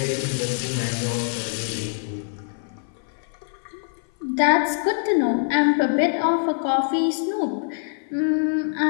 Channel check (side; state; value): right; silent; 55 dB below the other